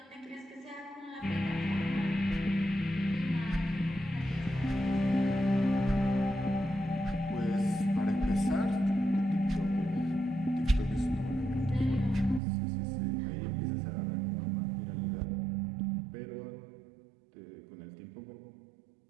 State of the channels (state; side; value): drops out; left; at 12.4 s